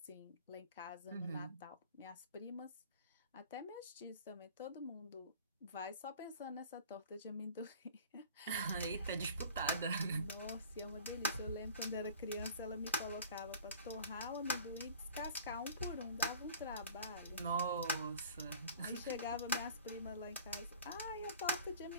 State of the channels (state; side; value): inverted; both; correlation -0.45